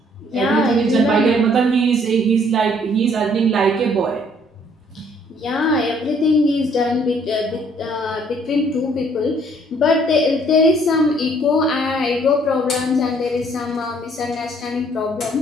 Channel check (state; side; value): normal; both; correlation 0.62